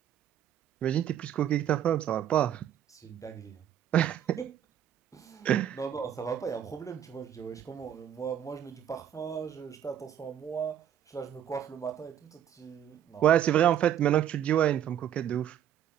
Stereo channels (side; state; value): left; quieter; 10.3 dB